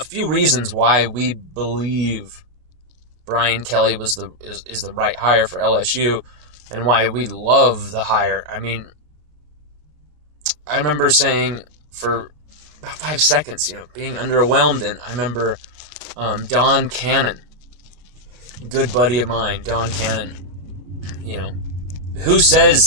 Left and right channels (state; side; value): late; left; 33 ms